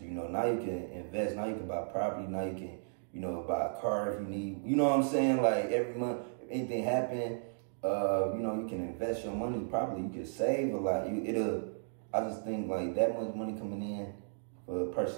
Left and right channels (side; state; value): left; silent; digital silence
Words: Now you can invest. Now you can buy property. Now you can, buy a car if you need. You know what I'm saying? Like, every month, if anything happen, you can invest your money properly. You can save a lot. I just think like that much money coming in for a